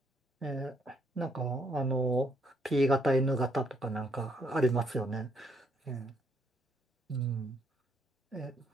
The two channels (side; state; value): both; normal; correlation 0.71